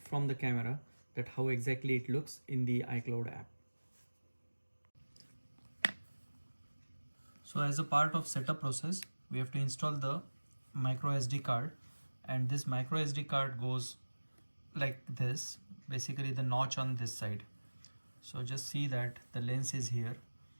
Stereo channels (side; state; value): both; inverted; correlation -1.00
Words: the camera, that how exactly it looks in the iCloud app. So as a part of setup process, we have to install the micro SD card, and this micro SD card goes like this, basically the notch on this side. So just see that the lens is here